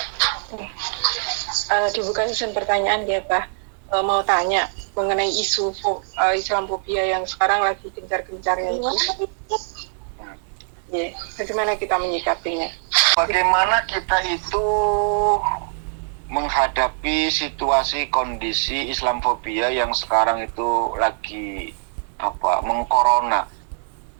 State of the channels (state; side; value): silent; left; digital silence